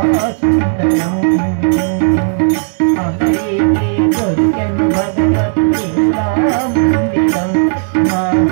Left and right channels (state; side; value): silent; left; digital silence